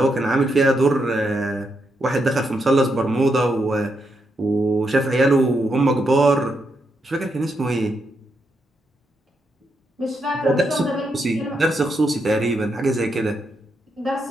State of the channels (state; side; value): normal; both; correlation 0.81